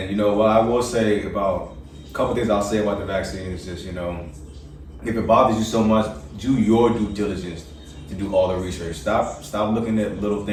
I will say about a couple things I'll say about the vaccine is just, if it bothers you so much, do your due diligence to do all the research. Stop looking at little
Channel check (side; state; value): both; identical; correlation 1.00